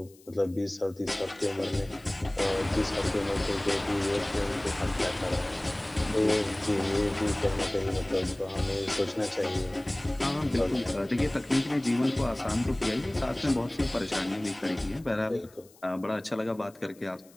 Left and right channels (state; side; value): noise; left; hiss, 27 dB below the sound